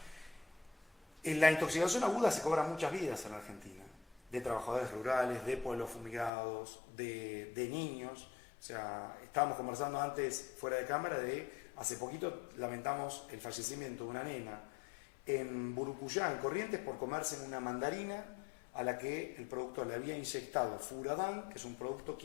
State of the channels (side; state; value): right; drops out; at 6.3 s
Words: En la intoxicación aguda se cobran muchas vidas en Argentina, de trabajadores rurales, de pueblos fumigados, de niños. O sea, estábamos conversando antes fuera de cámara hace poquito lamentamos el fallecimiento de una nena en Burucuyá, en Corrientes, por comerse una mandarina a la que el productor le había inyectado furadán, que es un producto